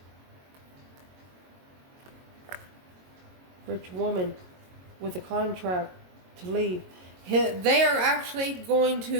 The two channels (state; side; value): late; left; 22 ms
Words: Rich woman with a contract to leave. They are actually going